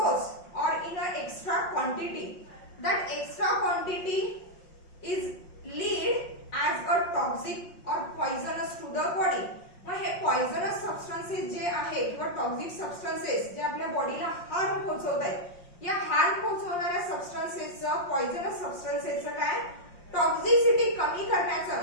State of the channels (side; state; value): right; late; 5.6 ms